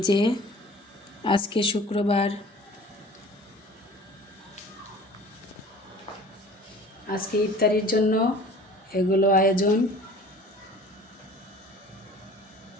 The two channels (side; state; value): both; normal; correlation 0.45